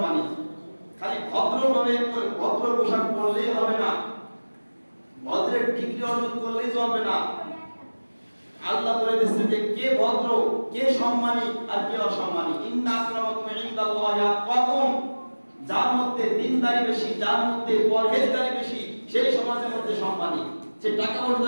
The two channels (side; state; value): both; inverted; correlation -1.00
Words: খালি ভদ্রভাবে ভদ্র পোশাক পরলেই হবে না, ভদ্রের ডিগ্রি অর্জন করলেই চলবে না। আল্লাহ বলে দিয়েছেন যে কে ভদ্র, কে সম্মানী আর কে অসম্মানী। ইন্না আক্রামাকুম ইনদাল্লাহি আতকাকুম। যার মধ্যে দিনদারি বেশি, যার মধ্যে পরহেজগারি বেশি, সেই সমাজের মধ্যে সম্মানী। সে টাকা